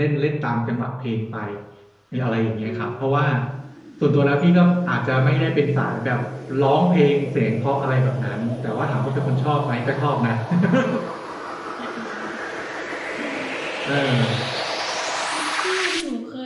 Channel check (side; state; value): both; identical; correlation 1.00